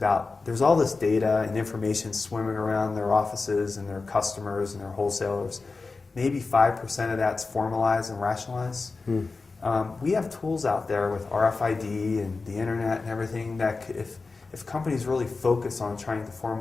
there's all this data and information swimming around their offices and their customers and their wholesalers. Maybe 5% of that's formalized and rationalized. We have tools out there with RFID and the internet and everything that if companies really focus on trying to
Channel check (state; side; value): quieter; right; 4.0 dB